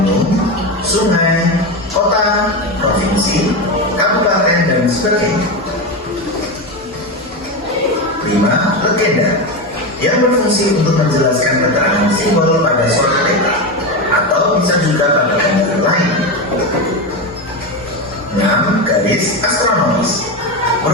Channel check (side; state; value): both; normal; correlation 0.16